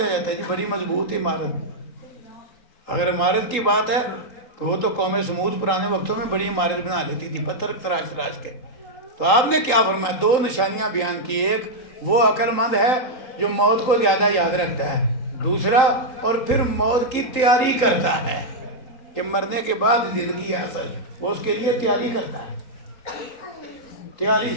جاتا ہے. جی بڑی مضبوط عمارت. اگر عمارت کی بات ہے تو وہ تو قوم سمود پرانے وقتوں میں بڑی عمارت بنا لیتی تھی، پتھر تراش تراش کے. تو آپ نے کیا فرمایا؟ 2 نشانیاں بیان کی. ایک، وہ عقل مند ہے جو موت کو زیادہ یاد رکھتا ہے. دوسرا، اور پھر موت کی تیاری کرتا ہے کہ مرنے کے بعد زندگی ہے اصل، وہ اس کے لیے تیاری کرتا ہے. تیاری.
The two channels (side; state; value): right; late; 3.9 ms